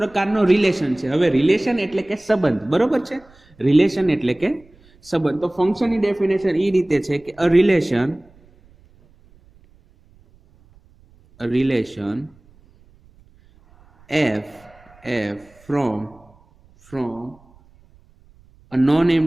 રિલેશન છે. હવે રિલેશન એટલે કે સંબંધ, બરોબર છે. રિલેશન એટલે કે સંબંધ. તો ફંક્શનની ડેફિનેશન એ રીતે છે કે અ relation f from a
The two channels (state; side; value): noise; right; rumble, 29 dB below the sound